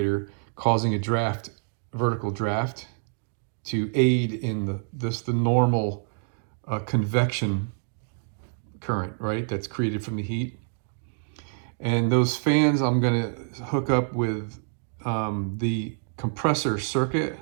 causing a draft, vertical draft, to aid in the normal convection current, right, that's created from the heat. And those fans I'm going to hook up with the compressor circuit.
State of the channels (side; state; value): left; silent; digital silence